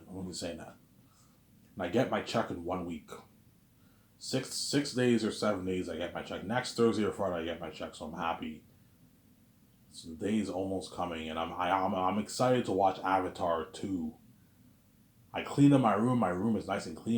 I'm only saying that. And I get my check in 1 week. 6 days or 7 days, I get my check. Next Thursday or Friday, I get my check. So I'm happy. So the day is almost coming, and I'm excited to watch Avatar 2. I cleaned up my room. My room is nice and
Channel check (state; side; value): identical; both; correlation 1.00